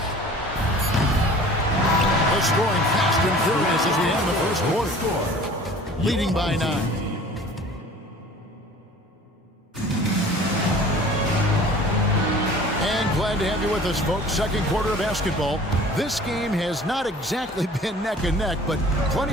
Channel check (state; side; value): normal; both; correlation 0.46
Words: They're scoring fast and furious as we end the first quarter. Leading by 9. Glad to have you with us, folks. Second quarter of basketball. This game has not exactly been neck and neck, but